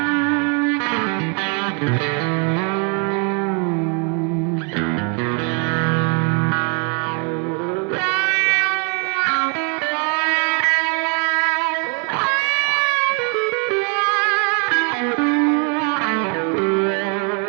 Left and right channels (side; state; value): left; quieter; 36.0 dB